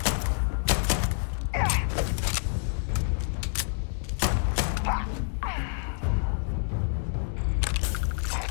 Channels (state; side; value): silent; right; digital silence